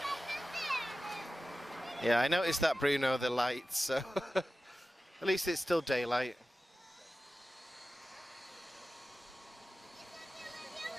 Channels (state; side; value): normal; both; correlation 0.95